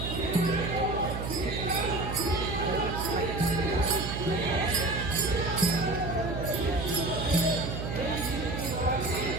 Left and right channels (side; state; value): right; noise; hum, 4 dB below the sound